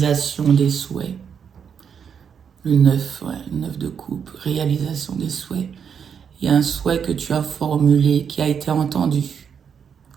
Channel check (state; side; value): quieter; left; 7.3 dB